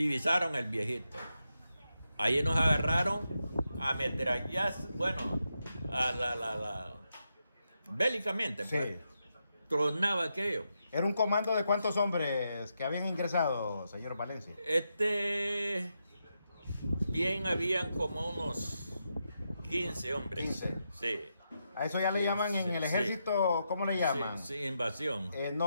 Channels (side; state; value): both; inverted; correlation -0.85